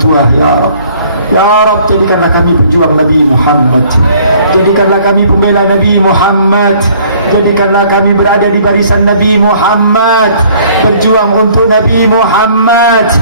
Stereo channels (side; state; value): both; inverted; correlation -0.58